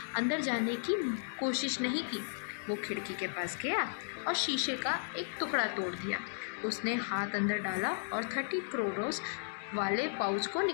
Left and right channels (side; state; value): right; silent; digital silence